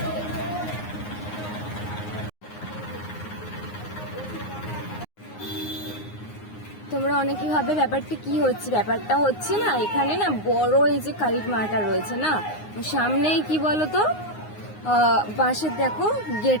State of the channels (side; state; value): right; late; 9.6 ms